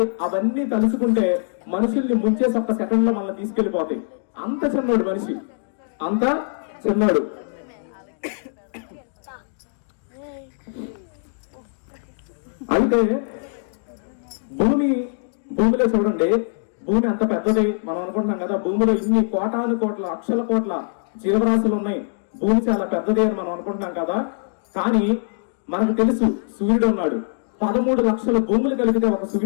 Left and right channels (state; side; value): silent; right; digital silence